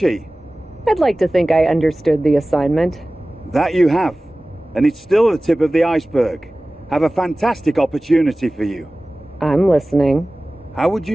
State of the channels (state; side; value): normal; both; correlation 0.98